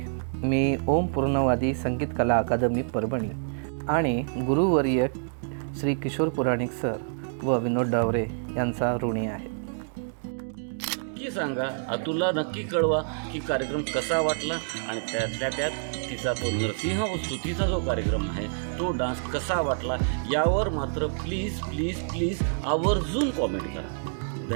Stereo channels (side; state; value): left; silent; digital silence